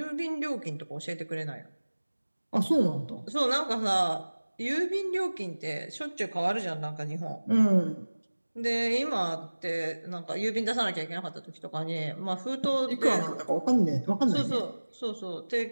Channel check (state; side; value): inverted; both; correlation -1.00